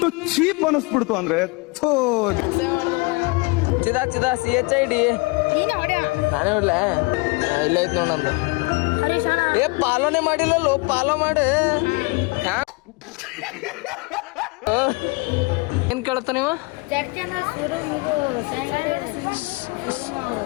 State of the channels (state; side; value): quieter; right; 26.8 dB